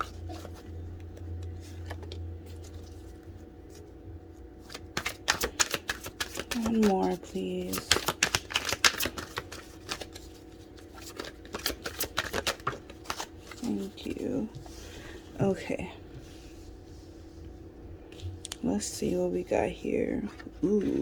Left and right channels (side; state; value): both; identical; correlation 1.00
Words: One more, please. Thank you. Okay. Let's see what we got here.